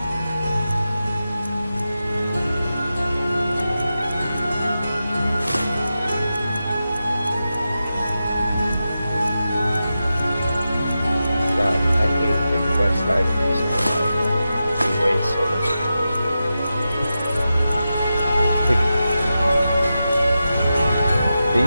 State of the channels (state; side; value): inverted; both; correlation -0.91